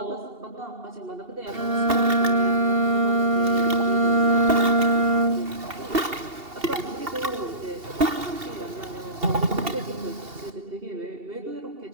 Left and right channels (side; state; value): left; late; 2.7 ms